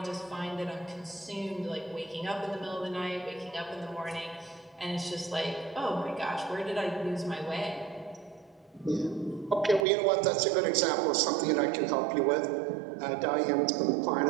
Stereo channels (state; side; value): drops out; left; at 9.9 s